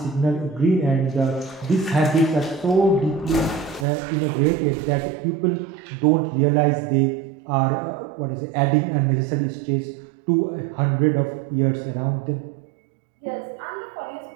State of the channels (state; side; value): drops out; left; at 3.9 s